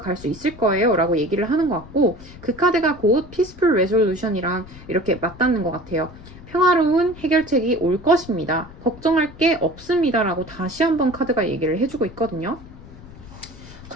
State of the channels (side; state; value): left; noise; rumble, 18 dB below the sound